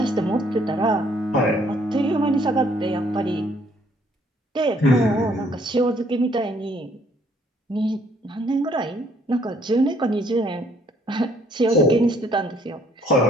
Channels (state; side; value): normal; both; correlation 0.64